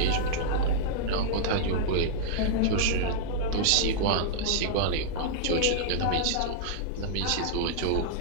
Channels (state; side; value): different; both; correlation -0.02